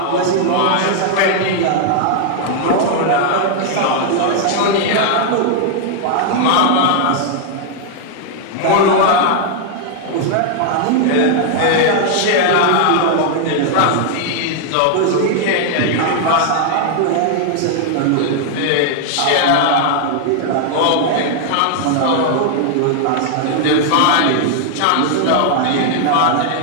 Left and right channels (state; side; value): different; both; correlation 0.00